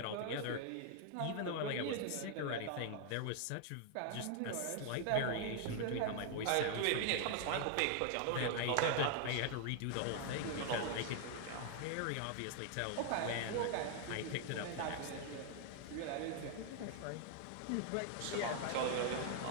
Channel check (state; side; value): different; both; correlation 0.00